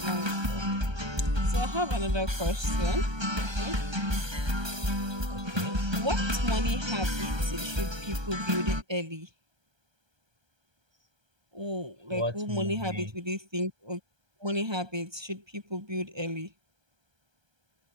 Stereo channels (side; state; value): left; late; 1.3 ms